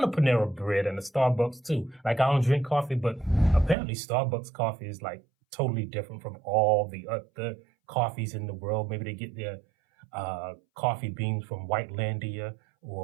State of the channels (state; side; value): drops out; left; at 3.8 s